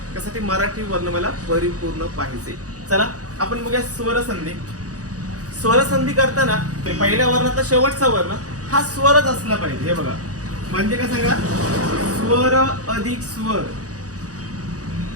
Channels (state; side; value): late; left; 0.67 ms